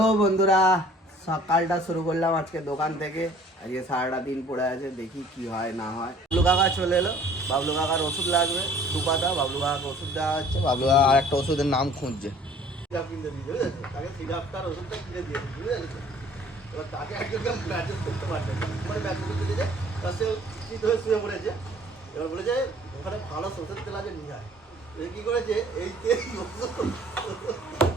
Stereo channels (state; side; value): normal; both; correlation 0.53